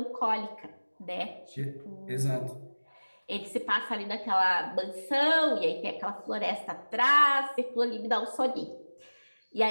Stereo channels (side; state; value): both; inverted; correlation -1.00